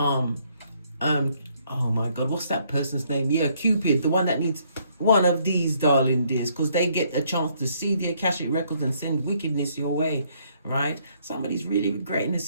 my God, what's that person's name? Yeah, Cupid, the one that needs one of these, darling dears, because they get a chance to see the Akashic records and send wickedness your way, right? Somebody's really regretting the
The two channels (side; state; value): both; inverted; correlation -0.68